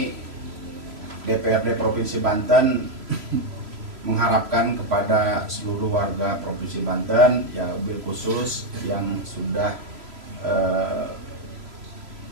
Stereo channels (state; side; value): late; left; 3.0 ms